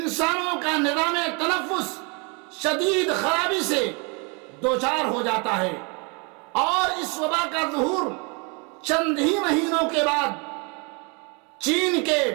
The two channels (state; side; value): quieter; left; 32.6 dB